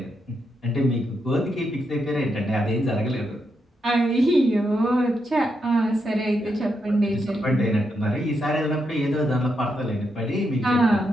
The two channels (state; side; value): normal; both; correlation 0.82